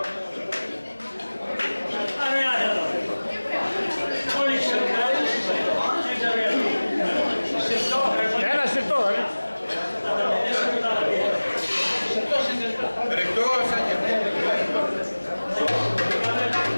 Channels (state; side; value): inverted; both; correlation -1.00